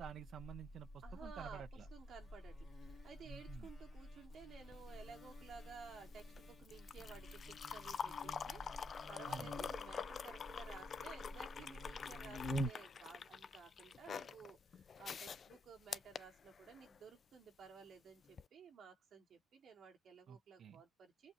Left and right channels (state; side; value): normal; both; correlation 0.77